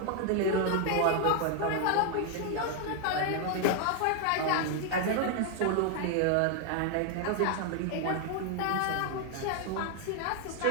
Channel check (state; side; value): different; both; correlation 0.00